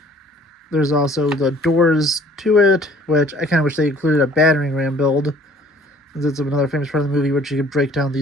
There's also the doors to it, which I kind of wish they included a battering ram build. It's another famous part of the movie, which you could break down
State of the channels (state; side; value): normal; both; correlation 0.55